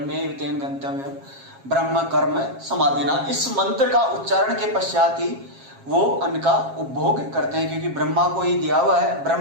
तेन गंतव्यम ब्रह्म कर्म समाधिना, इस मंत्र का उच्चारण के पश्चात ही वो अन्न का उपभोग करते हैं, क्योंकि ब्रह्मा को ही दिया हुआ है,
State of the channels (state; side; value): late; left; 7.4 ms